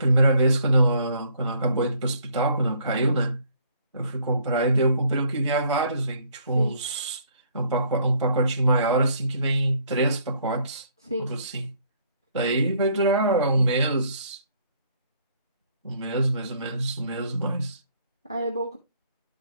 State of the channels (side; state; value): both; inverted; correlation -0.64